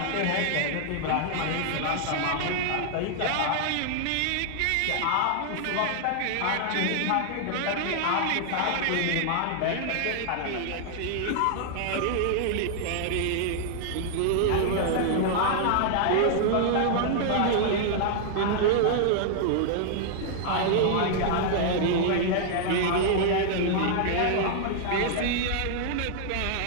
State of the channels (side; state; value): both; different; correlation -0.01